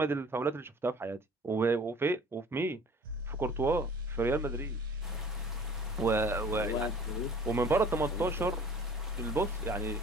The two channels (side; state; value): both; normal; correlation 0.48